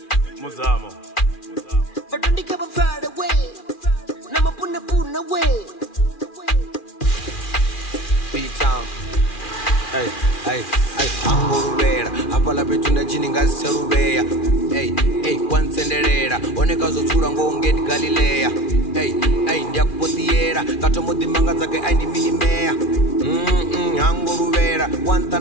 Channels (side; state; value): right; late; 2.4 ms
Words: Muzamo. But don't you come far away. Nama puna way. B-Town. Hey, angoruvera apala petunda chini ngasicharuveya hey kwansenderera oneka zotsura ngongeti galileya hey ndiyakupotiyera katomodhimanga dzake aindiminimeya angoruvera